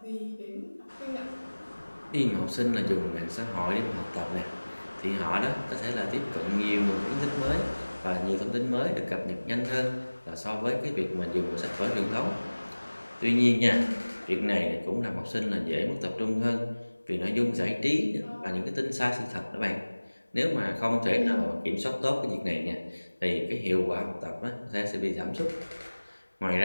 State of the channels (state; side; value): inverted; both; correlation -1.00